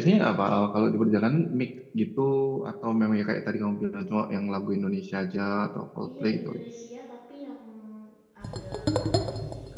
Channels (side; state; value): both; identical; correlation 1.00